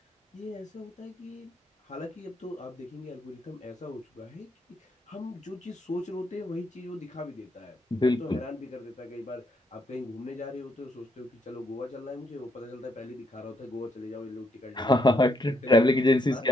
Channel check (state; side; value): normal; both; correlation 0.75